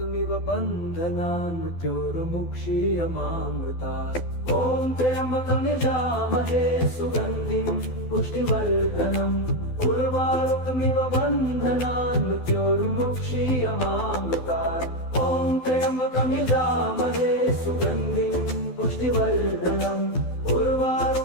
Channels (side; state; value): right; late; 12 ms